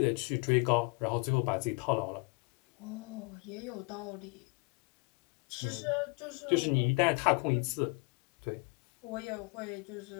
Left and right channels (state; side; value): quieter; right; 31.2 dB